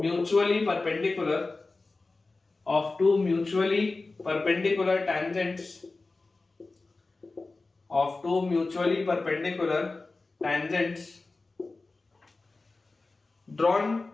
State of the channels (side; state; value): right; quieter; 3.5 dB